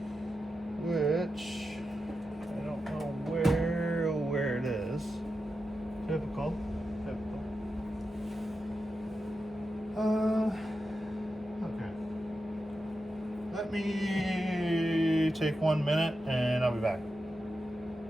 which I don't know where it is. Typical. Okay. Let me take 1 minute and I'll be back.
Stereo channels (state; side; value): normal; both; correlation 0.89